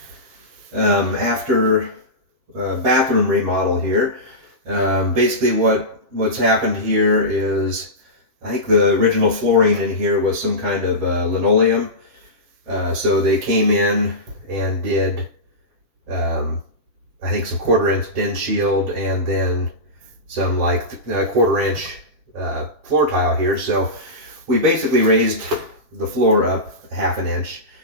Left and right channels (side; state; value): left; late; 7.4 ms